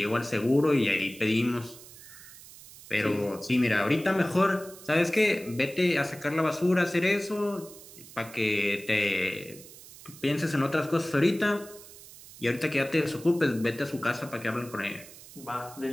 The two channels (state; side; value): noise; right; hiss, 18 dB below the sound